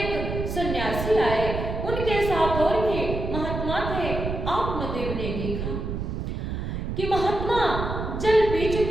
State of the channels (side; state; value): right; noise; rumble, 4 dB below the sound